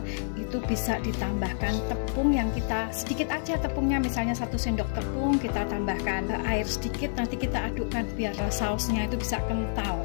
itu bisa ditambahkan tepung yang kita sedikit aja tepungnya, misalnya 1 sendok tepung, kita tambahkan air sedikit, nanti kita adukkan biar sausnya itu bisa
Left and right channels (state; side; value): silent; right; digital silence